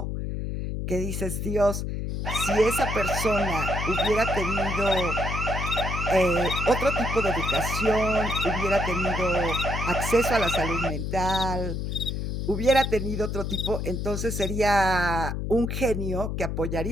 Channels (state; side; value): noise; left; hum, 3 dB below the sound